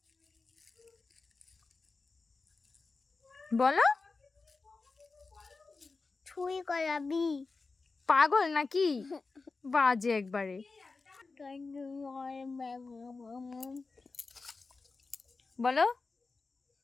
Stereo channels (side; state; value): right; quieter; 4.0 dB